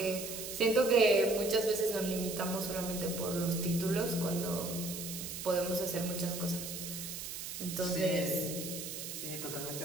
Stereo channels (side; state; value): right; noise; hiss, 7 dB below the sound